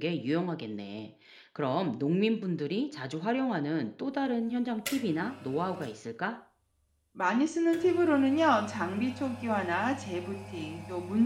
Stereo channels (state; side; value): identical; both; correlation 1.00